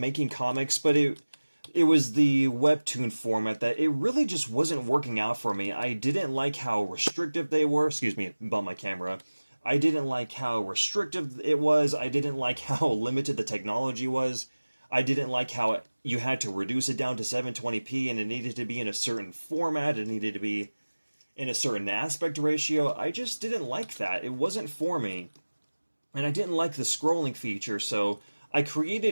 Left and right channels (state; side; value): inverted; both; correlation -1.00